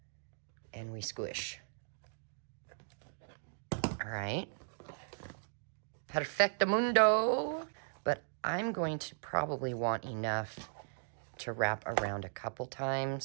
and we squish. All right. Perfectamundo. But I'm going to probably want enough to wrap around a couple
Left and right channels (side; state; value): left; silent; digital silence